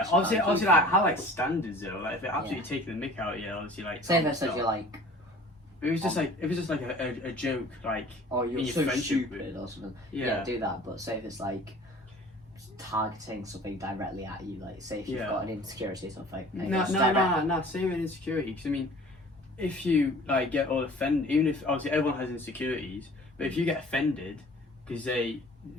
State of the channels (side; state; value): both; normal; correlation 0.47